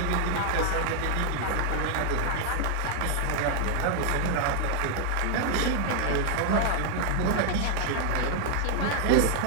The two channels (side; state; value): both; different; correlation 0.00